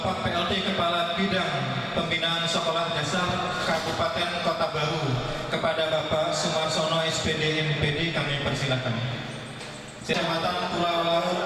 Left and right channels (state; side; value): identical; both; correlation 1.00